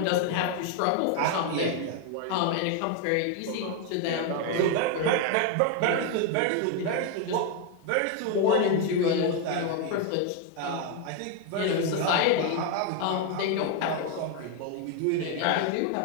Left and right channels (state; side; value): different; both; correlation 0.01